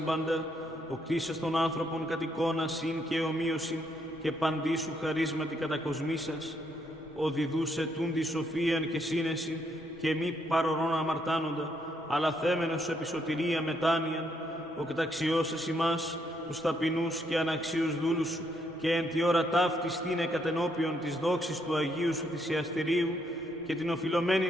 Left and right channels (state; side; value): normal; both; correlation 0.74